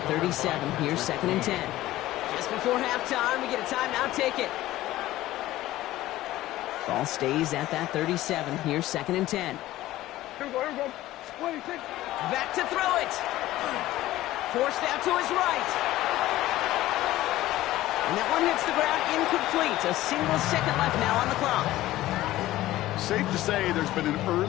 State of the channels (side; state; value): right; quieter; 15.7 dB